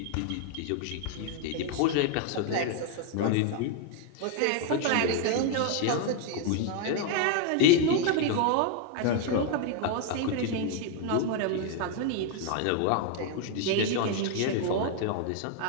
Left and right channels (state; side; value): different; both; correlation 0.00